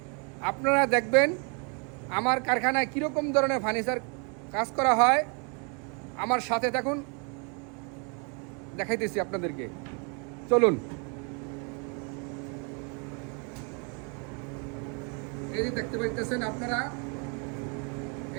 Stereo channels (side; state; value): left; quieter; 36.1 dB